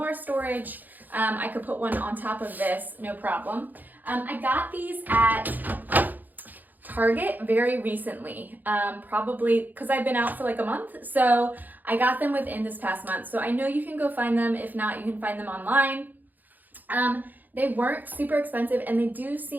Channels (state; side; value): late; left; 0.085 ms